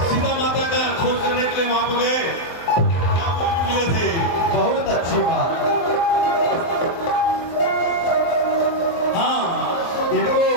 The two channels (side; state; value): right; late; 24 ms